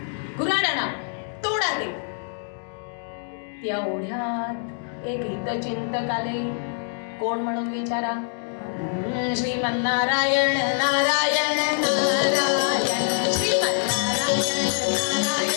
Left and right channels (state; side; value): silent; right; 61 dB below the other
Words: गुराडाना तोडा ते. त्या ओढ्यात एक हितचिंतक आले. कोण म्हणून विचारा, श्रीमन्नारायण नारायण नारायण श्रीमन्नारायण